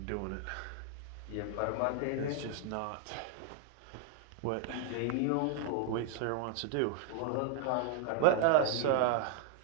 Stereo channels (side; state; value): both; different; correlation 0.00